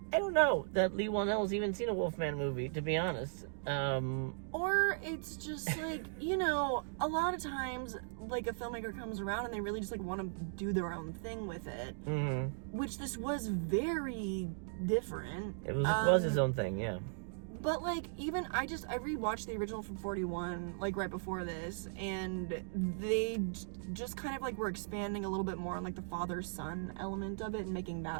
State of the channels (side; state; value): left; silent; digital silence